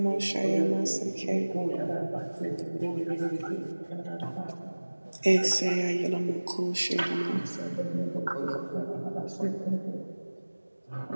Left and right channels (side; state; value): both; inverted; correlation -1.00